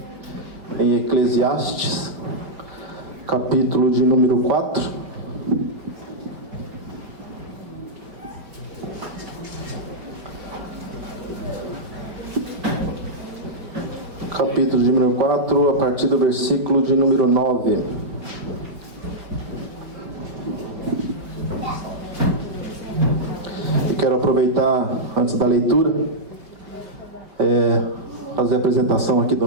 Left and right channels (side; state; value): left; late; 5.1 ms